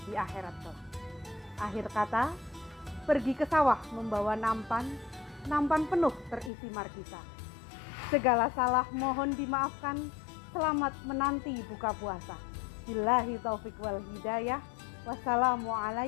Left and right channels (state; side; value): drops out; right; at 6.5 s